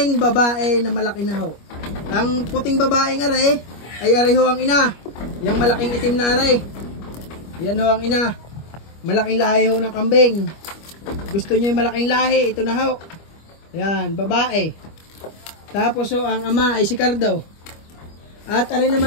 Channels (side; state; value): right; late; 25 ms